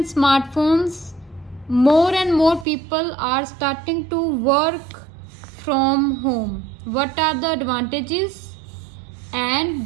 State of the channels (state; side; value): drops out; left; at 2.7 s